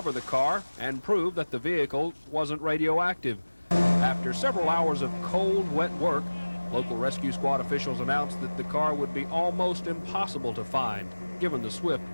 the car, and prove that the vehicle wasn't radioactive. After several hours of cold, wet work, local rescue squad officials announced that the car would be almost impossible to find, given the swift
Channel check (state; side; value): inverted; both; correlation -1.00